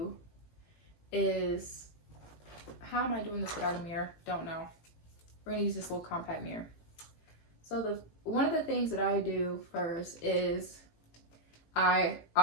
is, how am I doing this without a mirror? Don't know. We're gonna use this little compact mirror. So one of the things that I do first is I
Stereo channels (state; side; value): late; right; 18 ms